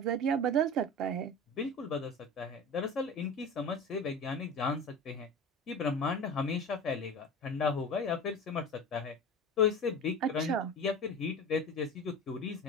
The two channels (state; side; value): normal; both; correlation 0.33